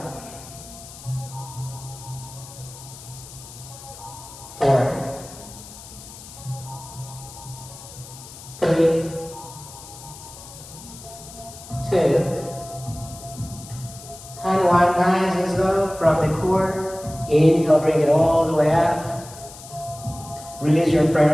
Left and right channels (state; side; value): noise; left; hiss, 16 dB below the sound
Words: 4, 3, 2, and 1. Nice and slow from the core. Inhale, bring it all the way up. Release your